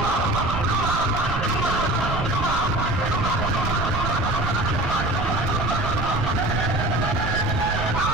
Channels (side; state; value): right; noise; rumble, 3 dB below the sound